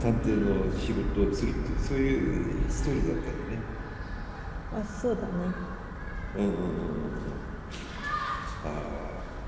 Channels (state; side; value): identical; both; correlation 1.00